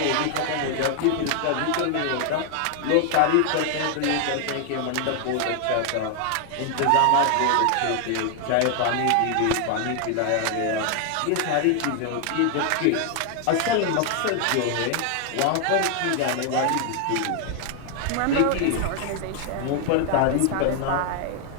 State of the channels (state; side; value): different; both; correlation 0.00